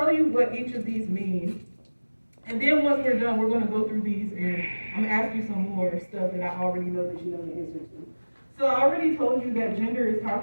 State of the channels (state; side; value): inverted; both; correlation -1.00